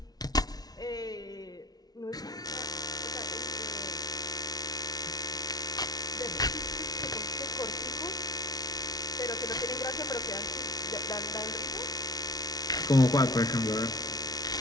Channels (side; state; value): right; late; 0.19 ms